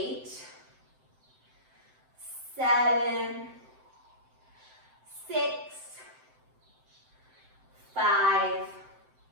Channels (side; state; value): left; late; 7.7 ms